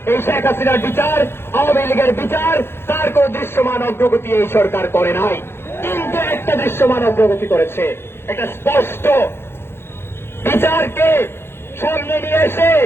এই শেখ হাসিনার বিচার, আওয়ামী লীগের বিচার, তার কোন দৃশ্যমান অগ্রগতি এই সরকার করে নাই। কিন্তু একটা দৃশ্যমান অগ্রগতি করেছে, একটা স্পষ্ট বিচারকে সামনে নিয়ে এসে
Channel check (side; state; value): right; late; 0.11 ms